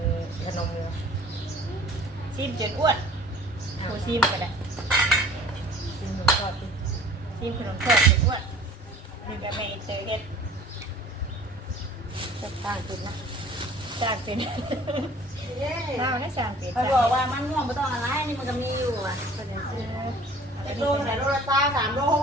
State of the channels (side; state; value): both; normal; correlation 0.49